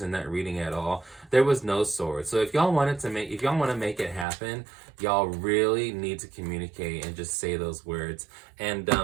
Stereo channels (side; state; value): left; drops out; at 4.2 s